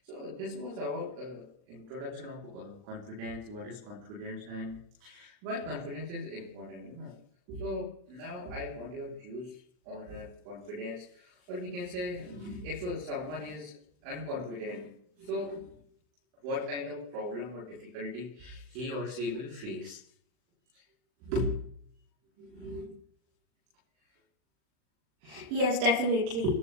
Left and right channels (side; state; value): left; late; 39 ms